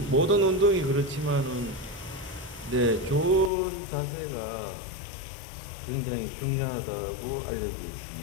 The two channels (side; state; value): right; drops out; at 3.5 s